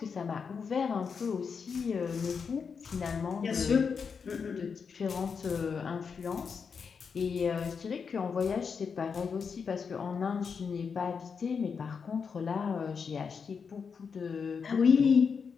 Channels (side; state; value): right; quieter; 5.9 dB